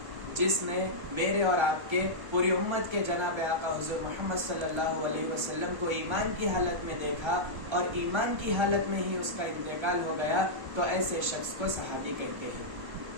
جس نے میرے اور آپ کے پوری امت کے جناب آقا حضور محمد صلی اللہ علیہ وسلم کو ایمان کی حالت میں دیکھا اور ایمان کی حالت میں ہی اس کا انتقال ہو گیا، تو ایسے شخص کو صحابی کہتے ہیں۔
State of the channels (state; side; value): late; left; 1.1 ms